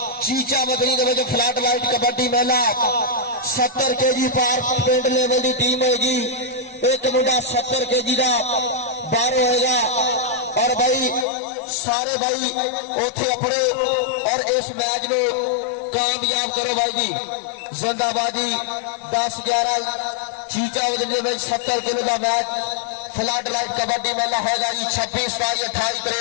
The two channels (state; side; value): drops out; right; at 11.2 s